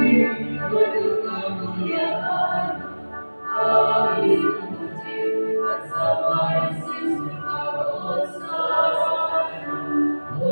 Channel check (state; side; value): inverted; both; correlation -1.00